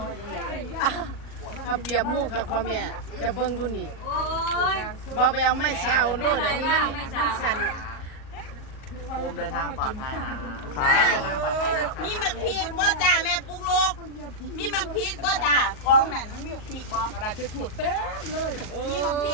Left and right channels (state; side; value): late; right; 38 ms